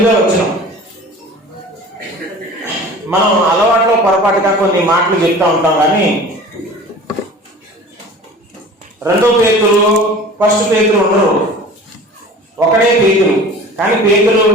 వచనం. మనం అలవాట్లో పొరపాటుగా కొన్ని మాటలు చెప్తా ఉంటాం, కానీ 2వ పేతురు ఫస్ట్ పేతురు ఉండరు, ఒకడే పేతురు. కానీ పేతురు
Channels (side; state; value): both; normal; correlation 0.41